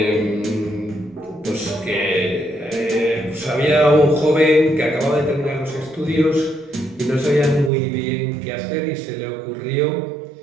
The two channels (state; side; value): drops out; left; at 7.7 s